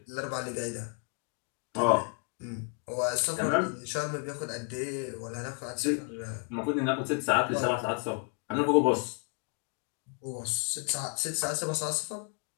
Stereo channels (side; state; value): right; quieter; 39.4 dB